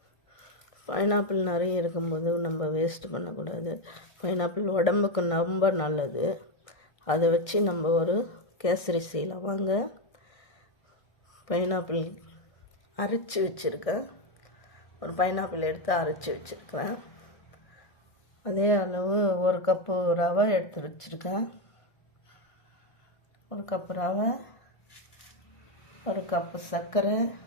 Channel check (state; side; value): late; right; 1.6 ms